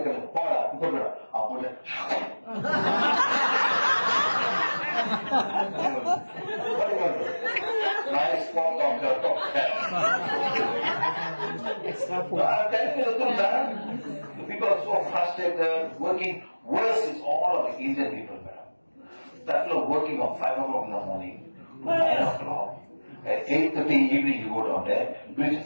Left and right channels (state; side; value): inverted; both; correlation -1.00